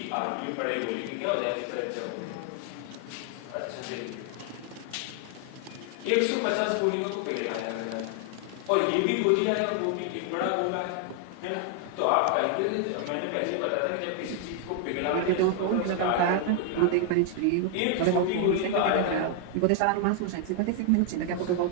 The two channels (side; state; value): both; different; correlation 0.00